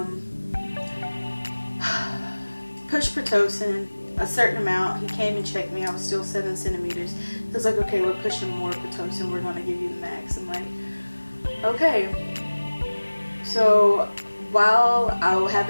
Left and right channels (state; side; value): inverted; both; correlation -1.00